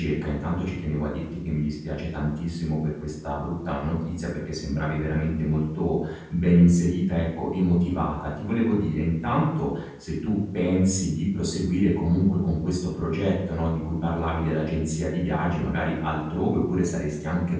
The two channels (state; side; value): identical; both; correlation 1.00